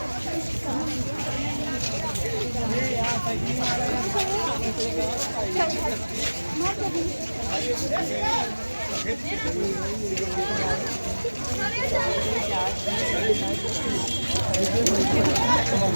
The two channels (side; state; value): both; inverted; correlation -1.00